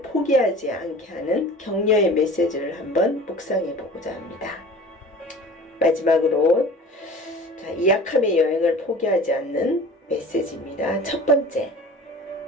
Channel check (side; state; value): both; normal; correlation 0.42